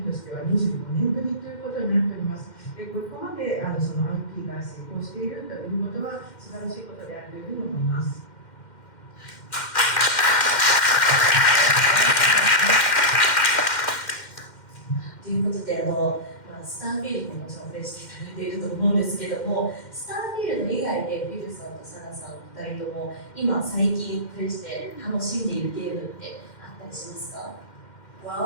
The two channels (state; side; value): late; right; 2.1 ms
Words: としては25年ぶりということになっております。で、ここまでその IP が成功しているということは素晴らしいことであるというふうに思います。ということで、スターフィールドももちろんプレイしていただいていると思うんですけども、スターフィールド以外でフィルさんとサナさんお二人とも今最近プレイして楽しんでいるゲームってあったりしますか？